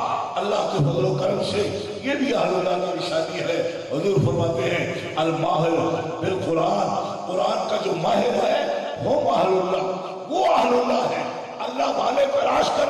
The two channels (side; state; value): both; identical; correlation 1.00